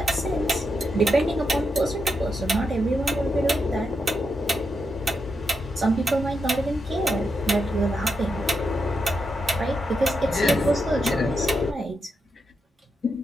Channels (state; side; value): normal; both; correlation 0.85